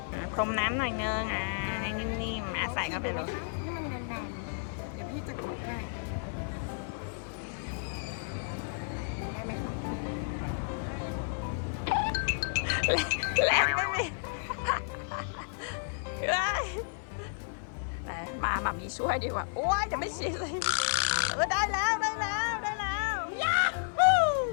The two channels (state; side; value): silent; right; 56 dB below the other